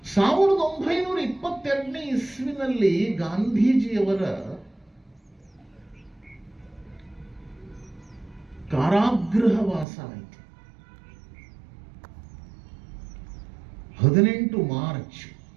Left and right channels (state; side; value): drops out; left; at 9.9 s